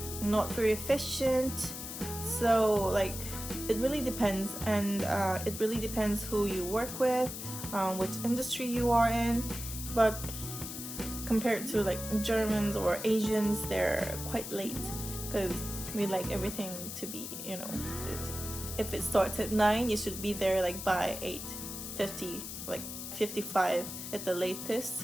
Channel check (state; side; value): noise; left; hiss, 8 dB below the sound